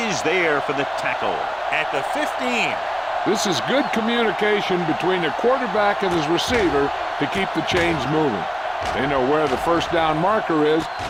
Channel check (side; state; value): both; identical; correlation 1.00